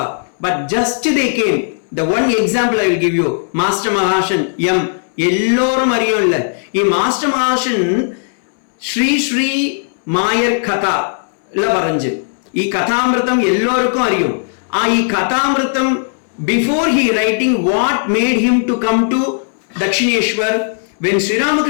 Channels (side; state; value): right; silent; 66 dB below the other